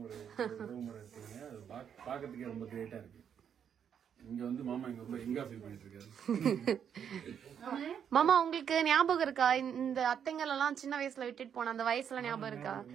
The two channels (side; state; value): left; quieter; 8.2 dB